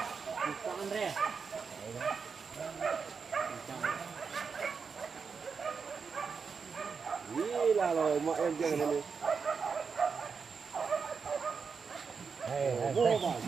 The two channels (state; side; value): quieter; left; 5.6 dB